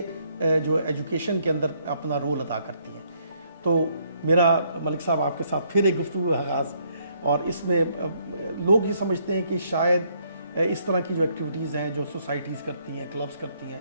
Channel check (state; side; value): inverted; both; correlation -0.70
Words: जो एजुकेशन के अंदर अपना रोल अदा करती हैं। तो मेरा मलिक साहब आपके साथ फिर एक गुफ्तगू आगाज़, और इसमें लोग ये समझते हैं कि शायद इस तरह की जो एक्टिविटीज़ हैं जो सोसाइटीज़ करती हैं, क्लब्स करती हैं,